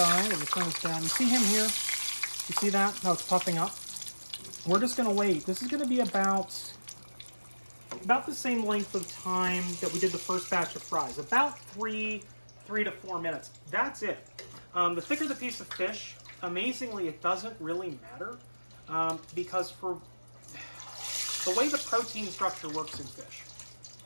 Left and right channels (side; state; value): both; inverted; correlation -1.00